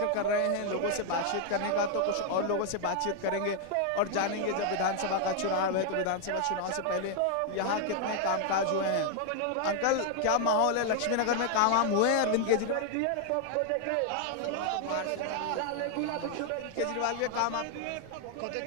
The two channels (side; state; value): both; different; correlation 0.00